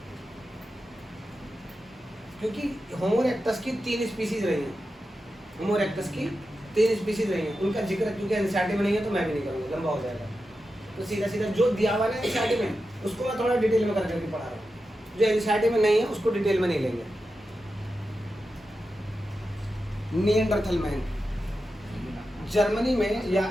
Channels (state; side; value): normal; both; correlation 0.90